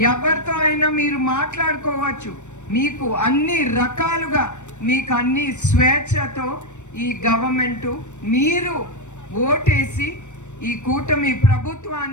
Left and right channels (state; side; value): late; right; 0.84 ms